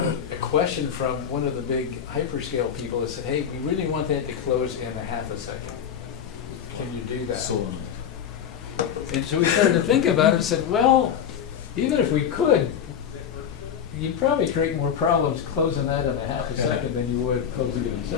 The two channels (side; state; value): right; quieter; 8.4 dB